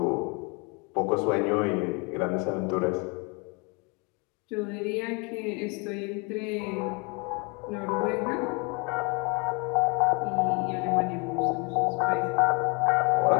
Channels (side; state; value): right; quieter; 30.2 dB